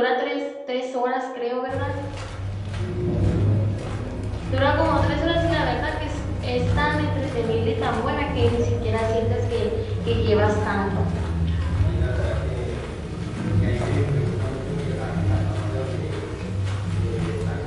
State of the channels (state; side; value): identical; both; correlation 1.00